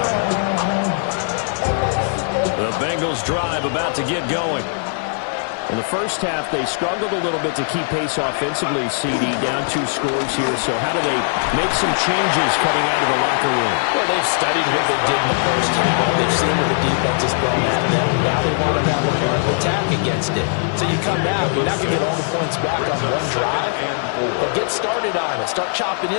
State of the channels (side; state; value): right; silent; 60 dB below the other